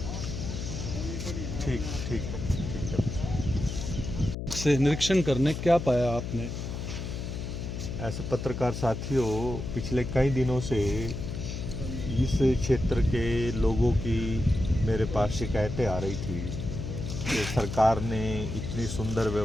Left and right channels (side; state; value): left; noise; hum, 5 dB below the sound